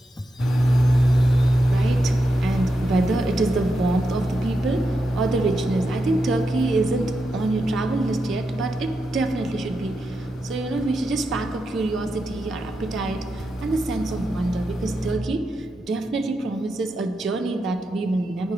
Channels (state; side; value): normal; both; correlation 0.86